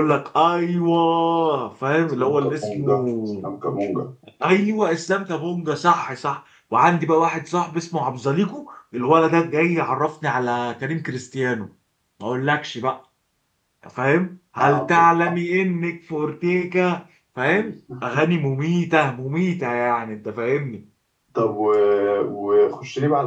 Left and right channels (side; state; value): both; identical; correlation 1.00